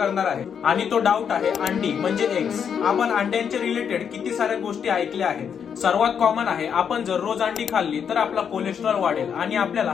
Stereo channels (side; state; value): right; quieter; 7.5 dB